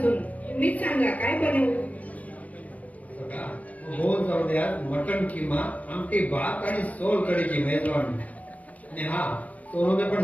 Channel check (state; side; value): late; right; 0.069 ms